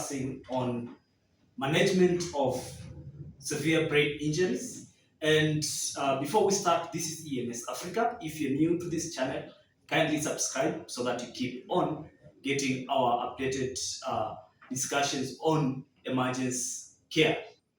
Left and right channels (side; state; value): both; identical; correlation 1.00